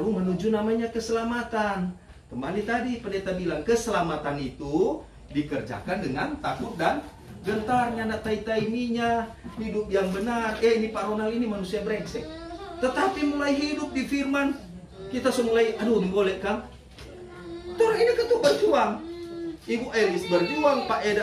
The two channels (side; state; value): both; identical; correlation 1.00